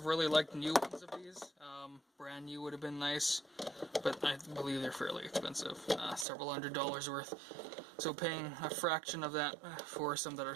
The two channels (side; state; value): left; drops out; at 6.2 s